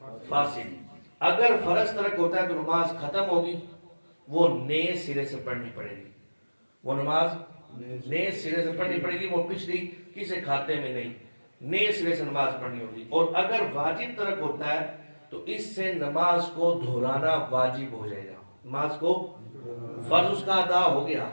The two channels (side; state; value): both; inverted; correlation -1.00